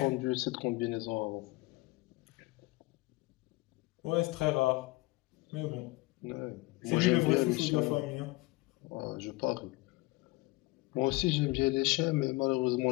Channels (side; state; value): right; quieter; 22.6 dB